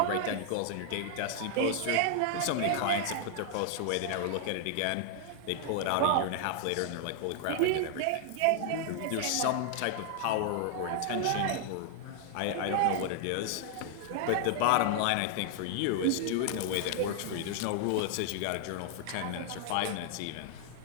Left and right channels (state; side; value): different; both; correlation 0.00